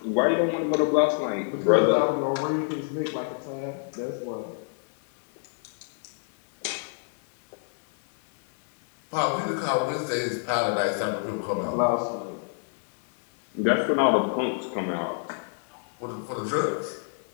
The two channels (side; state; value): right; silent; 60 dB below the other